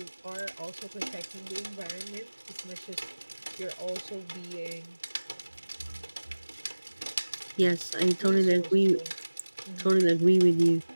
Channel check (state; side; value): inverted; both; correlation -1.00